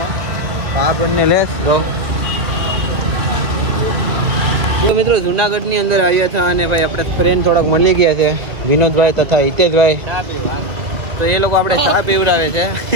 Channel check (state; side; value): late; left; 1.7 ms